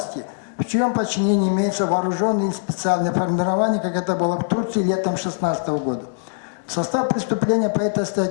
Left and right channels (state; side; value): silent; right; digital silence